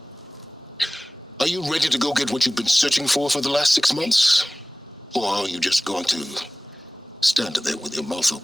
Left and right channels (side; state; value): both; normal; correlation 0.98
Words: are you ready to go get what you've been searching for the last 6 months? Or are you just going to stand there with your mouth